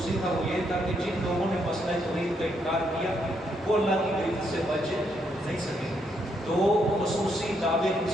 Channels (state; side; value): normal; both; correlation 0.76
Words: تھا وہ یہ تھا کہ جن لوگوں نے مسئلہ توحید کا انکار کیا وہ اللہ کی گرفت سے بچ نہیں سکیں گے. 2 خصوصی دعوے اس